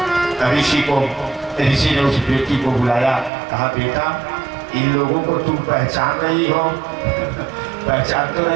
ऋषि ने उस बेटी को बुलाया, कहा बेटा इन लोगों को तुम पहचान रही हो? पहचान तो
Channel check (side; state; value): left; drops out; at 3.3 s